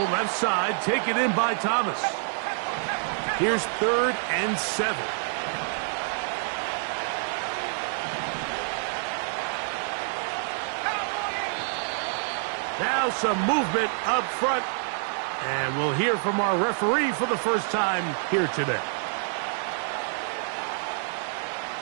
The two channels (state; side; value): silent; left; 60 dB below the other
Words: left side, taken in by Thomas. Here's 3rd and 7. Now some movement up front. And we'll hear from our referee for the first time here today.